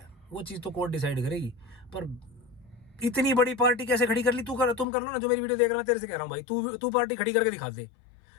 वो चीज़ तो कोर्ट डिसाइड करेगी। पर इतनी बड़ी पार्टी कैसे खड़ी कर ली? तुम कर लो ना, जो मेरी वीडियो देख रहा है, तेरे से कह रहा हूँ भाई, तू पार्टी खड़ी करके दिखा दे।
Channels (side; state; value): right; drops out; at 4.9 s